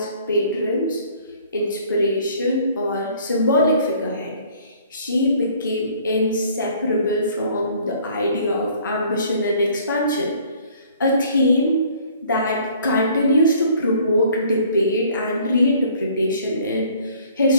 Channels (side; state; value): both; inverted; correlation -0.56